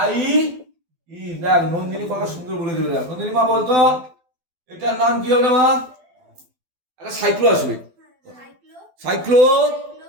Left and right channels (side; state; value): left; late; 12 ms